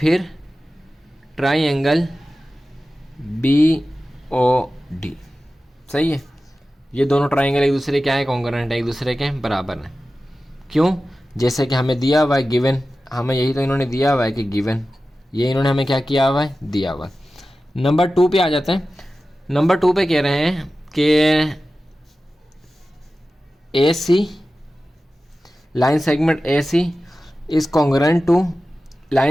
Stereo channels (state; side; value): normal; both; correlation 0.95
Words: ट्राइंगल बी ओ डी। सही है, ये दोनों ट्राइंगल एक दूसरे क्या है, कॉन्ग्रुएंट है, एक दूसरे के बराबर है। क्यों, जैसे कि हमें दिया हुआ है गिवन, हमें यही तो इन्होंने दिया हुआ है कि गिवन, ये इन्होंने हमें क्या किया हुआ है, दिया हुआ है। नंबर 2 पे आ जाते हैं। नंबर 2 पे कह रहे हैं कि A C line segment A C is congruent to